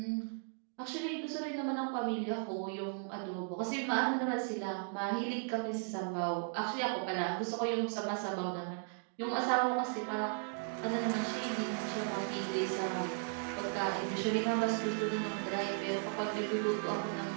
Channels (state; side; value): silent; left; 54 dB below the other